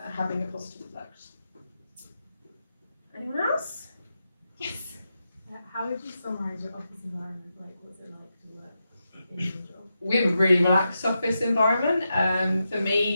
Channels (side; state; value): both; inverted; correlation -0.87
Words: having a positive effect. Anyone else? Yes. How would you summarise your office environment? Like, what's it like to work in your job? We have a really relaxed office environment. For